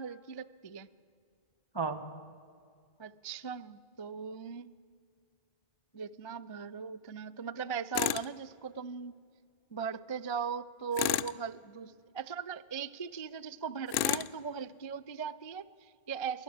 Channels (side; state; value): right; late; 2.5 ms